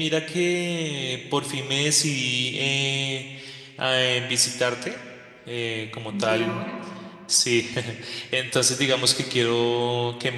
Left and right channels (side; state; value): both; identical; correlation 1.00